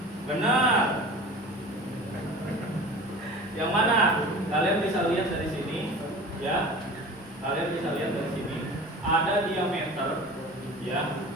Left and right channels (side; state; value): both; normal; correlation 0.38